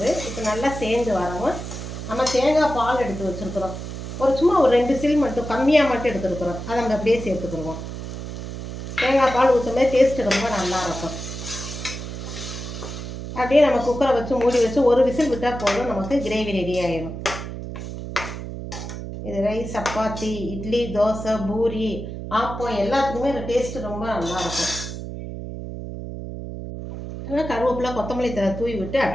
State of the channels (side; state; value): right; noise; hum, 8 dB below the sound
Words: இப்போ நல்லா சேர்ந்து வரவும் நம்ம தேங்காய் பால் எடுத்து வச்சுருக்குறோம். சும்மா ஒரு 2 சில் மட்டும் கம்மியாக மட்டும் எடுத்துருக்குறோம். அதை நம்ம அப்படியே சேர்த்துக்குருவோம். தேங்காய் பால் ஊற்றும்போது டேஸ்ட்டு ரொம்ப நல்லாயிருக்கும். அப்படியே நம்ம குக்கரை வச்சு மூடி வச்சு ஒரு விசில் விட்டால் போதும், நமக்கு கிரேவி ரெடி ஆகிடும். இது ரைஸ், சப்பாத்தி, இட்லி, தோசை, பூரி, ஆப்பம் எல்லாத்துக்குமே இந்த டேஸ்ட்டு ரொம்ப நல்லாயிருக்கும். கருவேப்பிலை, கொத்தமல்லி தழை தூவி விட்டு